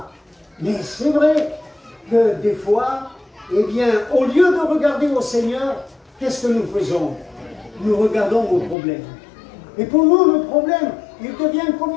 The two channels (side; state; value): right; drops out; at 8.8 s